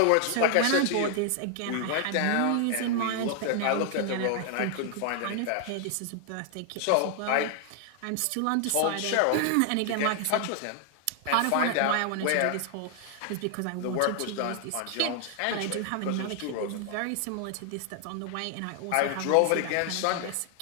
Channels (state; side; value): different; both; correlation 0.00